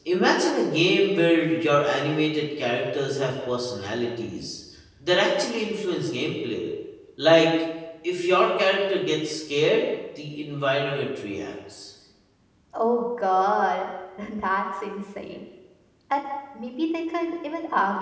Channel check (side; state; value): both; identical; correlation 1.00